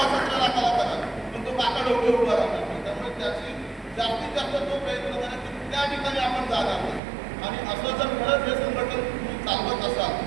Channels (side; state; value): left; drops out; at 7.0 s